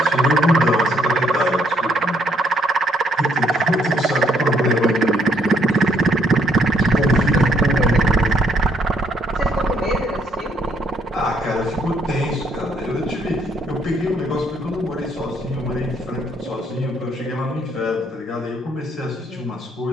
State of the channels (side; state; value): both; normal; correlation 0.69